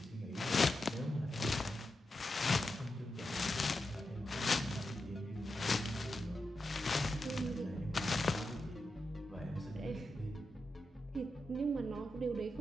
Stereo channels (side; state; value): both; normal; correlation 0.88